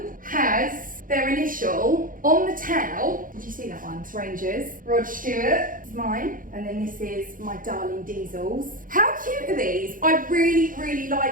has their initial on the towel. Did you see that one? It's Rangers. Rod Stewart is mine. And then this is my darling Diesel's. How cute are these? I really, really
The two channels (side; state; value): left; late; 0.40 ms